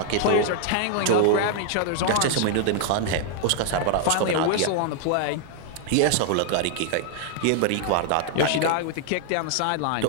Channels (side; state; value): both; different; correlation 0.00